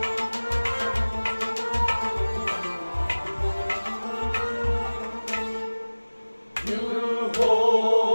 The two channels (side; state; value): both; inverted; correlation -1.00